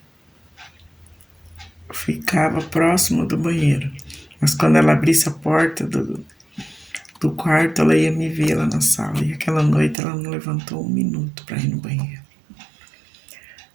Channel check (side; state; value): left; drops out; at 10.0 s